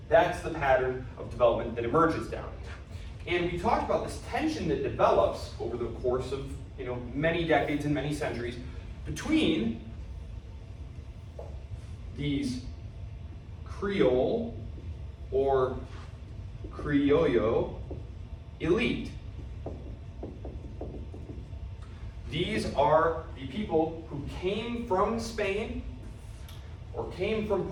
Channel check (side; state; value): both; identical; correlation 1.00